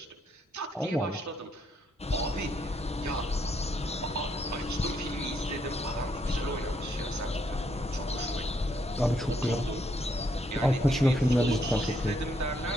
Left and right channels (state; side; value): normal; both; correlation 0.74